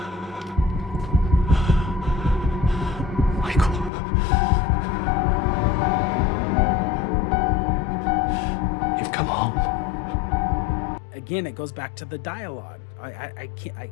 Michael. You've come home. Again, it goes back to the dialogue. I can't.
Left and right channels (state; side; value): drops out; right; at 3.9 s